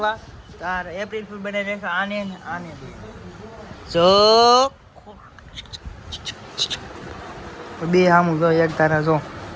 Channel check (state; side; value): identical; both; correlation 1.00